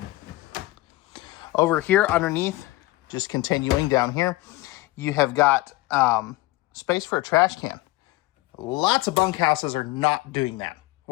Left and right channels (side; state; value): right; quieter; 19.3 dB